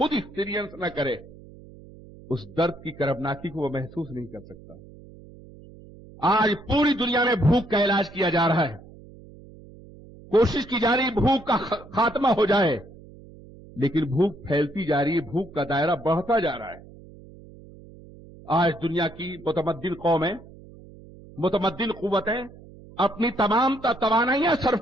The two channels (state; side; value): noise; right; hum, 20 dB below the sound